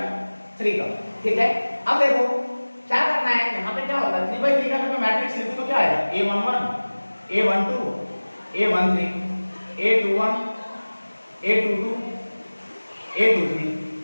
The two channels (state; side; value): inverted; both; correlation -1.00